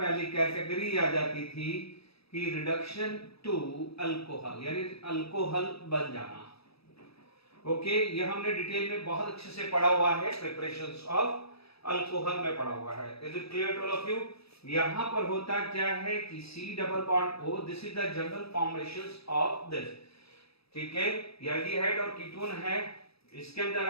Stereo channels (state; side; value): late; right; 0.77 ms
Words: कैटेगरी आ जाती थी कि रिडक्शन टू अल्कोहल, यानी अल्कोहल बन जाना। ओके, ये हमने डिटेल में बहुत अच्छे से पढ़ा हुआ है, प्रिपरेशंस ऑफ अल्कोहल में पड़ा हुआ है। Is it clear to all of you? यहां पर होता क्या है कि C double bond O, this is the general formations of this. ठीक है, एल्डिहाइड और कीटोन है, इसके अंदर